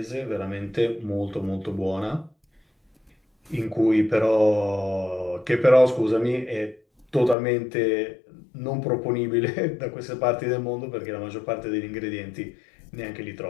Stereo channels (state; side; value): drops out; right; at 7.4 s